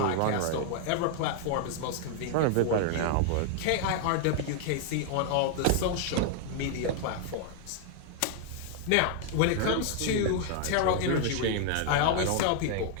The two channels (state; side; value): different; both; correlation 0.00